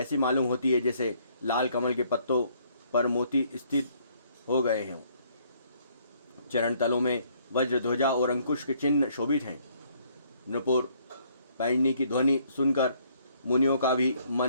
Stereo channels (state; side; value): inverted; both; correlation -0.66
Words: मालूम होती है जैसे लाल कमल के पत्तों पर मोती स्थित हो गए हों। चरण तलों में वज्र ध्वजा और अंकुश के चिन्ह शोभित हैं। नुपुर पैंजनी की ध्वनि सुनकर मुनियों का भी